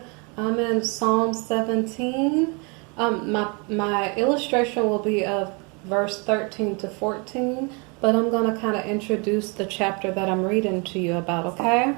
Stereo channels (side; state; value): left; quieter; 32.0 dB